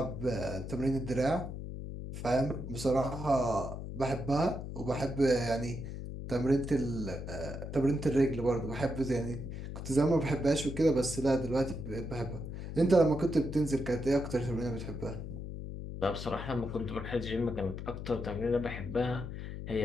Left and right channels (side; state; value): left; noise; hum, 7 dB below the sound